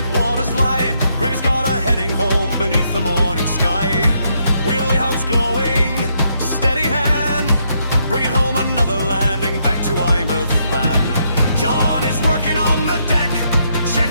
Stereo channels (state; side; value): inverted; both; correlation -0.76